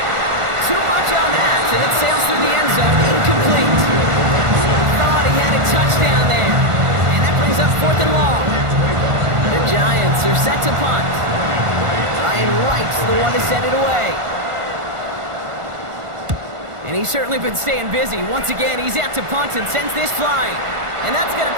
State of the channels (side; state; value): left; late; 1.5 ms